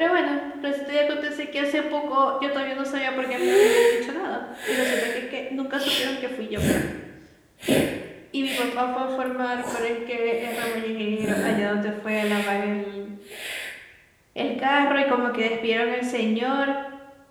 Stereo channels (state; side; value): identical; both; correlation 1.00